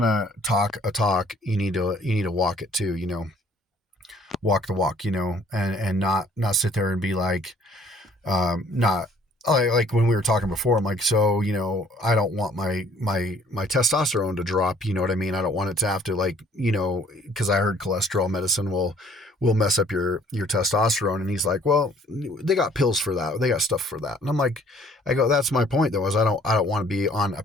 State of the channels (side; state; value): both; normal; correlation 0.58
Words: to talk a talk, you need to walk it too, walk the walk, and not sit there and be like, not like when we were talking before, I'm like, so, I don't want my testosterone to drop, you know what I mean? I don't want it to have to, like, cause I heard cholesterol medicine will mess up your testosterone. And he's like, well, they got pills for that. They got stuff for that. And I'm like, that's my point though, is I don't want to be on a